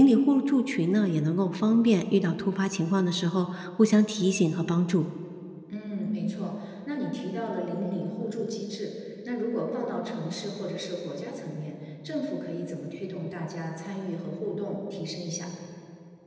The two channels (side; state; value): both; identical; correlation 1.00